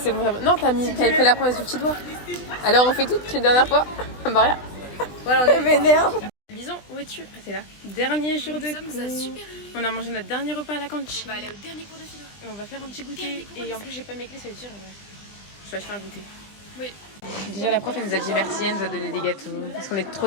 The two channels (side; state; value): right; late; 20 ms